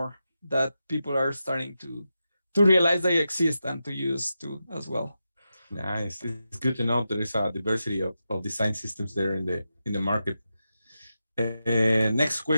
that people are starting to realize they exist and to use too as well. Nice. It's good to know there is a diversity of design systems there in the market. Next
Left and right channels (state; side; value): inverted; both; correlation -0.89